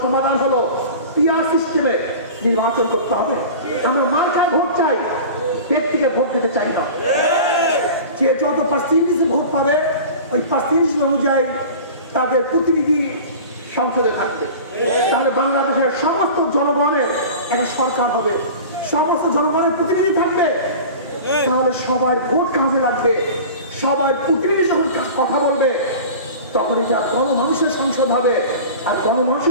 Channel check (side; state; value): both; inverted; correlation -0.37